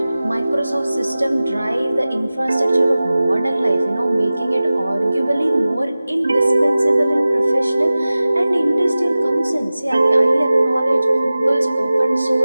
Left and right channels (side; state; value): both; inverted; correlation -0.97